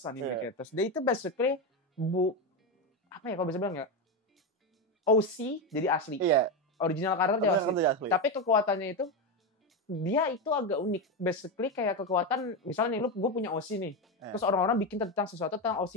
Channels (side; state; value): both; normal; correlation 0.12